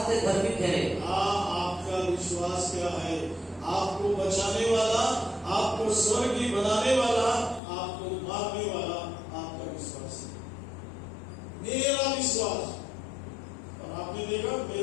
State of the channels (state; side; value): drops out; right; at 7.6 s